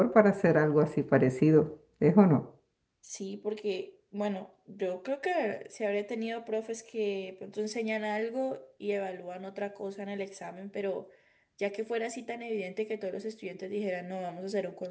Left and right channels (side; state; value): both; identical; correlation 1.00